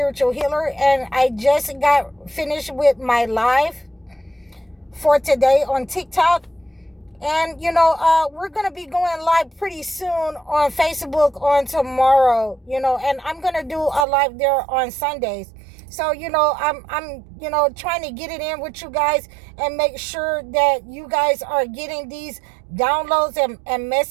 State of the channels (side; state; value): left; drops out; at 14.1 s